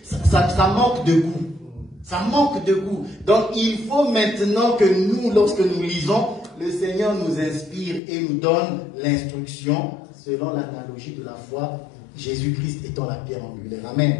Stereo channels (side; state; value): right; drops out; at 8.0 s